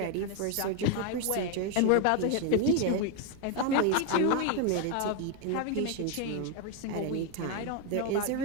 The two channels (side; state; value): both; different; correlation 0.01